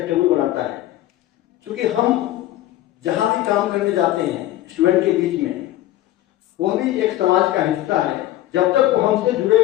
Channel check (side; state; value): right; quieter; 14.5 dB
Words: बनाता है। क्योंकि हम जहां भी काम करने जाते हैं स्टूडेंट के बीच में, वो भी एक समाज का हिस्सा है। जब तक वो हमसे